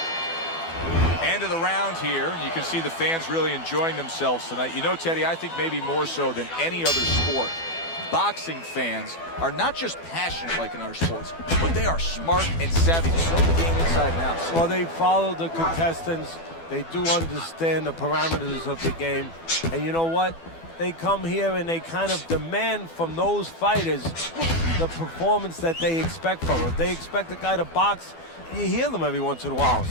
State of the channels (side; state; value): right; late; 12 ms